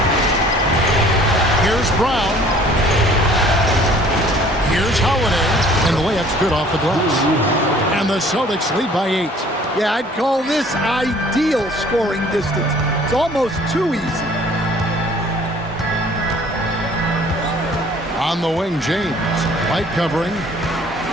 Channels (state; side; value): normal; both; correlation 0.54